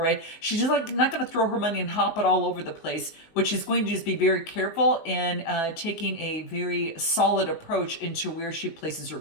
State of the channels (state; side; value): late; right; 19 ms